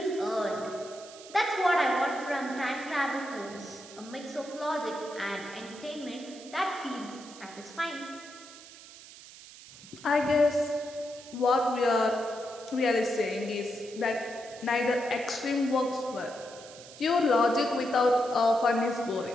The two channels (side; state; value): right; noise; hiss, 18 dB below the sound